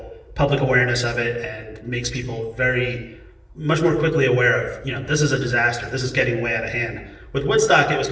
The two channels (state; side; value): identical; both; correlation 1.00